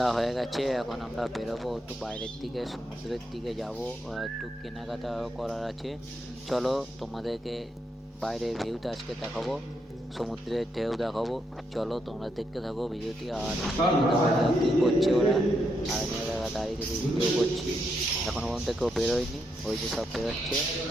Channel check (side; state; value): both; normal; correlation 0.80